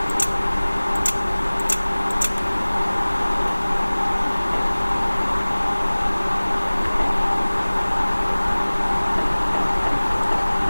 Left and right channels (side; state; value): both; inverted; correlation -1.00